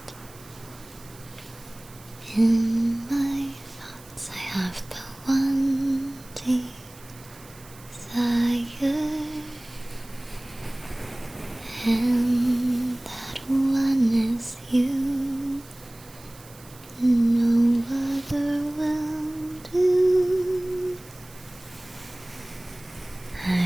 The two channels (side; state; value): right; noise; hiss, 22 dB below the sound